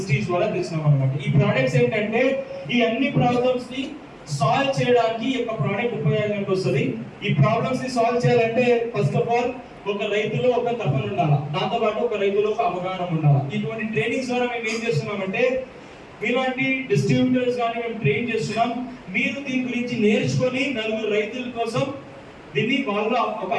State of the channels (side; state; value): both; identical; correlation 1.00